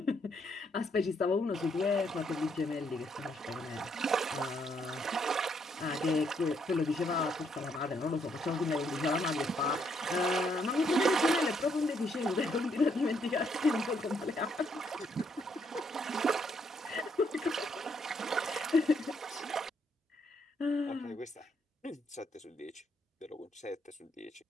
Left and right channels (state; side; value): normal; both; correlation 0.73